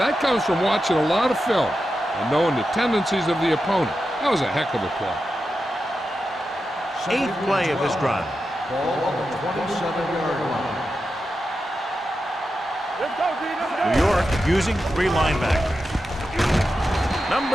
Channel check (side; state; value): both; normal; correlation 0.90